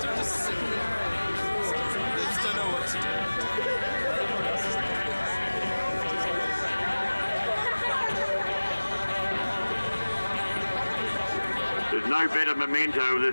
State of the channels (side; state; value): both; inverted; correlation -1.00